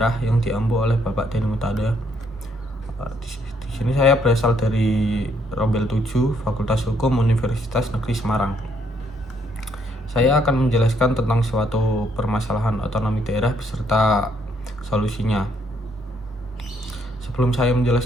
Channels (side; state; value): both; normal; correlation 0.70